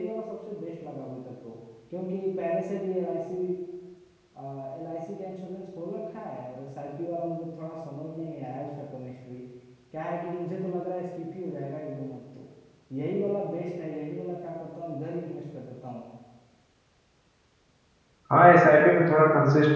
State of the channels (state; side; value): identical; both; correlation 1.00